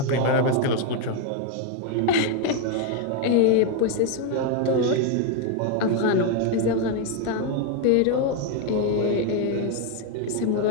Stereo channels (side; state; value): both; different; correlation 0.01